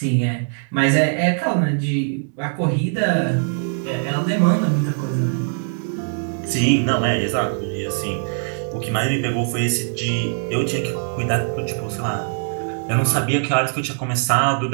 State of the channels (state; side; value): silent; left; digital silence